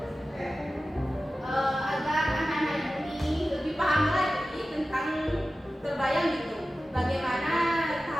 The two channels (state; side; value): normal; both; correlation 0.95